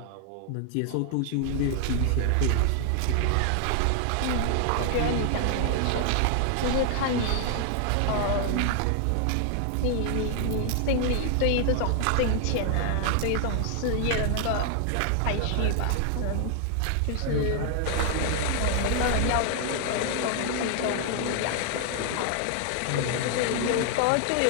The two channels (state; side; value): different; both; correlation 0.00